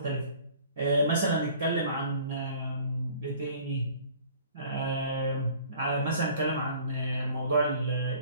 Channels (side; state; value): both; inverted; correlation -0.50